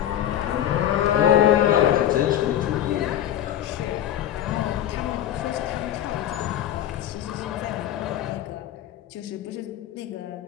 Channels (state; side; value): quieter; right; 11.5 dB